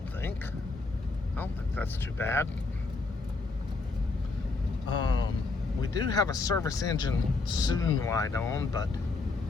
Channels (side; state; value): right; quieter; 3.7 dB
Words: think that's too bad. We do have a service engine soon light on, but